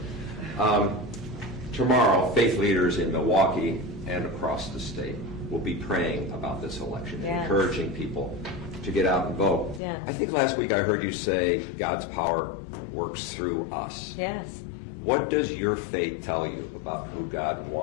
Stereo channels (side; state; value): right; drops out; at 9.8 s